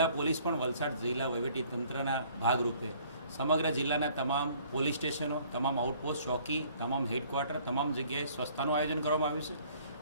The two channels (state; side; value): inverted; both; correlation -0.57